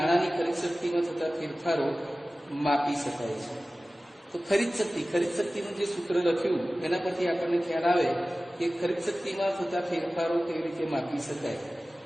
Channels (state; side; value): normal; both; correlation 0.96